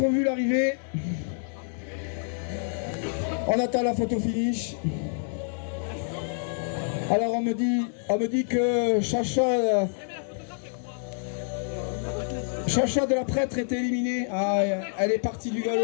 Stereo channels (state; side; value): silent; right; digital silence